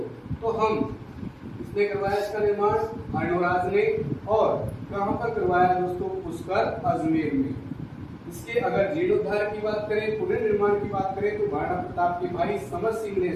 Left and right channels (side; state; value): both; identical; correlation 1.00